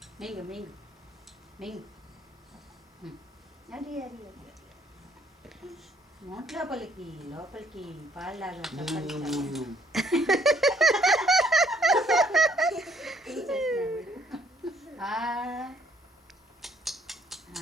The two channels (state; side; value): normal; both; correlation 0.67